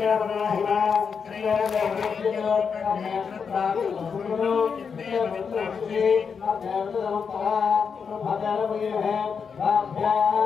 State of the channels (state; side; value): quieter; right; 6.1 dB